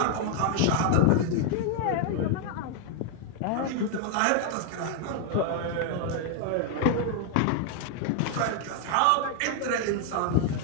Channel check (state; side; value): different; both; correlation 0.00